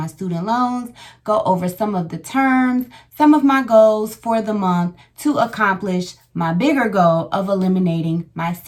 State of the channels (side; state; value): both; identical; correlation 1.00